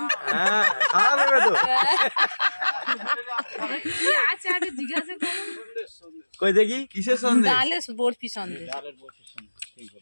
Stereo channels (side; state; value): both; inverted; correlation -1.00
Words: হ্যাঁ, খাওয়া দেবে তো। কি আছে আগে জিজ্ঞাসা করো। কই দেখি কিসের সন্দেশ? ডালের বরফি সন্দেশ।